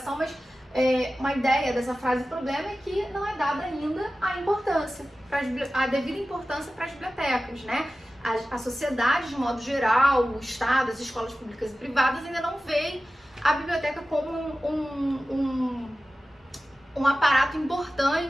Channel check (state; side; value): normal; both; correlation 0.95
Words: mas uma ideia dessa frase problema é que não é dada ainda a devida importância para as bibliotecas, né? A sociedade, de modo geral, o Estado, as escolas públicas e privadas ainda não veem a biblioteca como um aparato